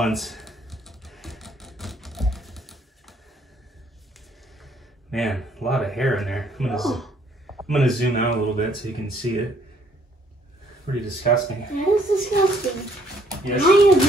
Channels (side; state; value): both; normal; correlation 0.65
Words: Man, a lot of hair in there. I'm gonna zoom out a little bit so you can see it. Pretty disgusting. That is disgusting. Yes. I